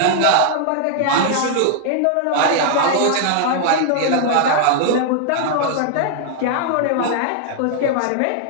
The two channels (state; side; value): different; both; correlation -0.01